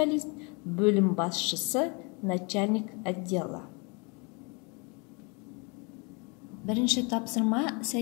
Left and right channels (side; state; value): right; quieter; 31.6 dB